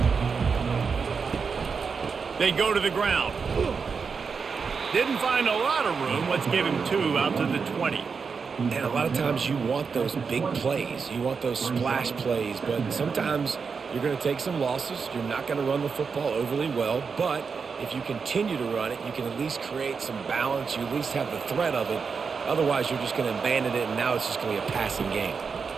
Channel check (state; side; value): quieter; left; 5.5 dB